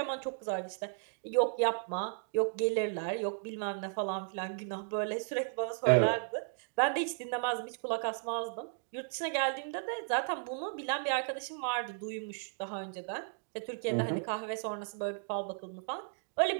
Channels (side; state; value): left; silent; digital silence